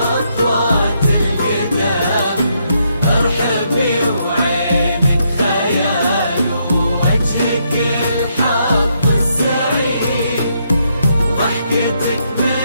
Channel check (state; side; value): inverted; both; correlation -0.76